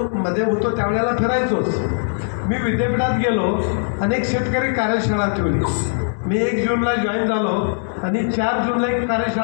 होतो त्यावेळेला फिरायचोच. मी विद्यापीठात गेलो, अनेक शेतकरी कार्यशाळा ठेवली. मी 1 जूनला जॉईन झालो आणि 4 जूनला एक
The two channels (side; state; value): right; silent; 66 dB below the other